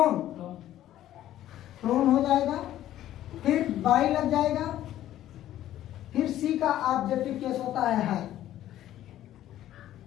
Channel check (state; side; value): quieter; right; 12.9 dB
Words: फ्लोन हो जाएगा, फिर बाई लग जाएगा, फिर सी का ऑब्जेक्टिव केस होता है।